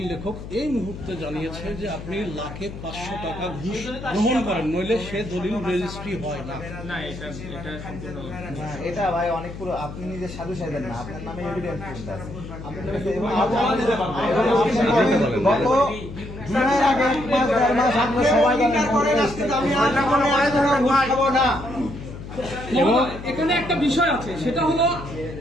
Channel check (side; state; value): left; noise; hum, 11 dB below the sound